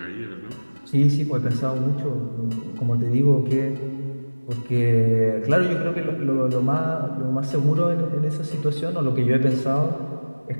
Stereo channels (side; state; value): both; inverted; correlation -1.00